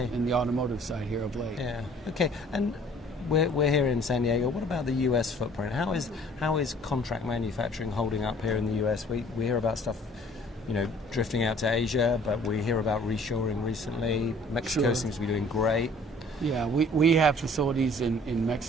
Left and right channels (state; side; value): normal; both; correlation 0.54